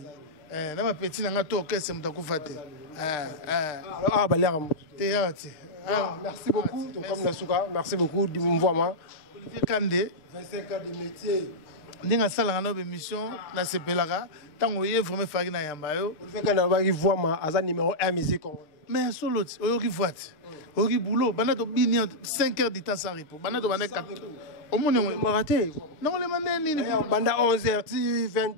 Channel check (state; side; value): late; right; 6.6 ms